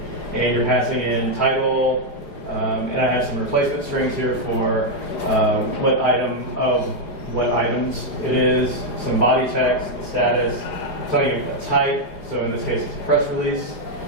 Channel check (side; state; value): right; late; 4.9 ms